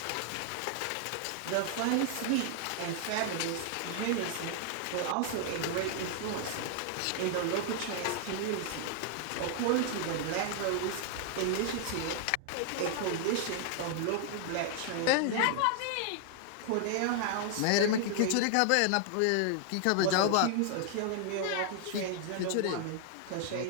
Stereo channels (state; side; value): different; both; correlation 0.00